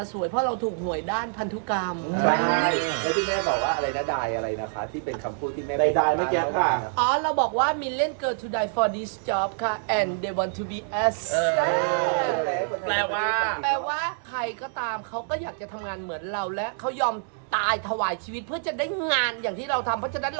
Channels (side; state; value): left; silent; digital silence